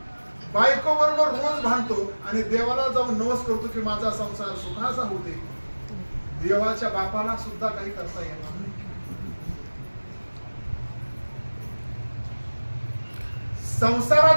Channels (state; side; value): inverted; both; correlation -1.00